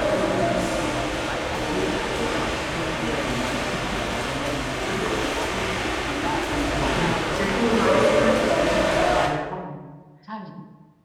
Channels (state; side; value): identical; both; correlation 1.00